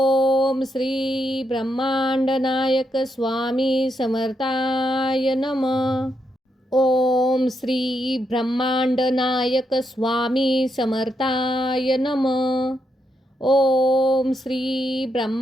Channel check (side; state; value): both; normal; correlation 0.81